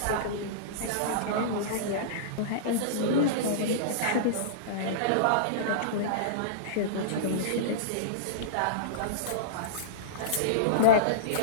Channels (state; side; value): different; both; correlation -0.04